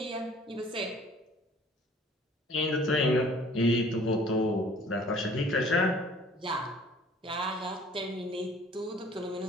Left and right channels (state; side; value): normal; both; correlation 0.53